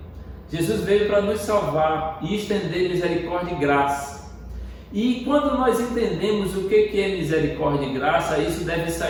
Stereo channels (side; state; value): both; identical; correlation 1.00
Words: Jesus veio para nos salvar e estender misericórdia e graça. E quando nós entendemos o que é misericórdia e graça, isso deve